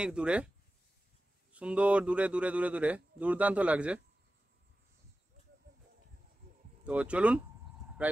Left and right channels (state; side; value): normal; both; correlation 0.95